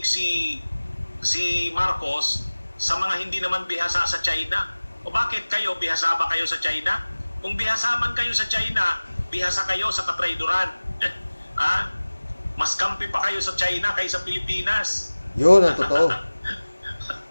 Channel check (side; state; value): both; inverted; correlation -1.00